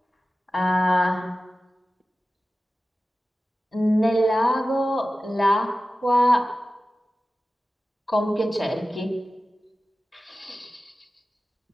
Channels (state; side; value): normal; both; correlation 0.95